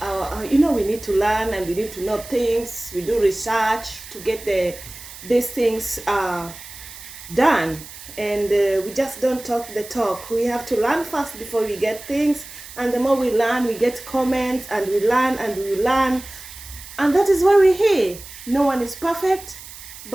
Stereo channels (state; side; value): noise; right; hiss, 15 dB below the sound